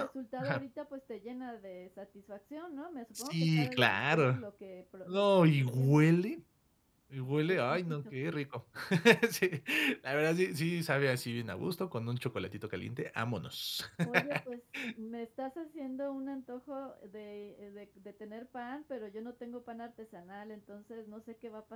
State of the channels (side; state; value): both; identical; correlation 1.00